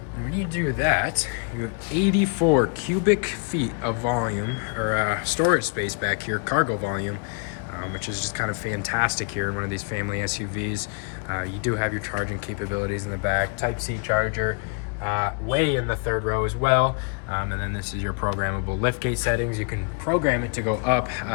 And when you do that, you have 84 cubic feet of volume, or storage space back here, cargo volume, which is just kind of fantastic here in one of these family SUVs. You do have your charging capabilities in the back, Type-C charger, way in the 3rd row as well. And then this is your programmable liftgate settings. You can program it to go up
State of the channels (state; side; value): quieter; right; 37.2 dB